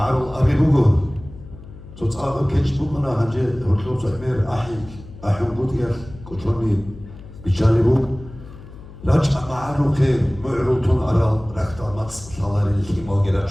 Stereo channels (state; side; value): noise; left; hum, 17 dB below the sound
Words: أبي بوجو تصعب كيش بوجنا هنجي هرتوب سأمير أحيم بودير كتروني بيشالي راجع معرول خير معرول تون أرال ركتا ماتس شالاري الخيمة